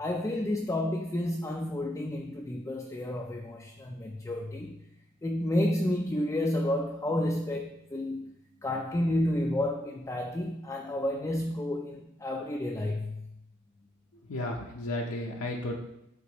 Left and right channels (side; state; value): both; normal; correlation 0.79